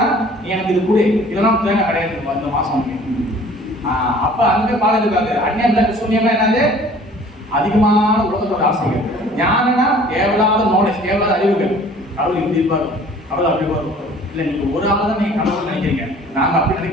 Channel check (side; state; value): both; normal; correlation 0.51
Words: நீ எனக்கு இது கொடு, இதெல்லாம் தேங்காய் கிடையாது இந்த மாசம். அப்ப அங்கே பாலம் எதிர்பார்க்கு. அந்நியம் சூன்யம்னா என்னது அதிகமான உலகத்தோட ஆசைகள். ஞானம்னா தேவையில்லாத நாலேஜ், தேவையில்லாத அறிவுகள். கடவுள் இப்படி இருப்பாரு, கடவுள் அப்படி வரும். இல்லை நீங்க ஒரு ஆள் தான் நீங்க கடவுள் நினைக்கிறீங்க, நாங்க அப்படி